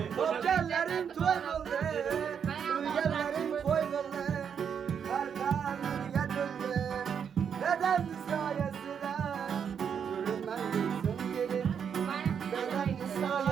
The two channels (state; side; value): quieter; left; 7.5 dB